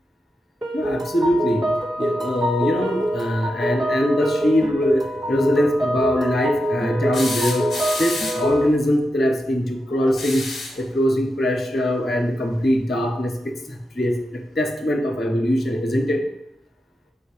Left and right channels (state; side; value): normal; both; correlation 0.87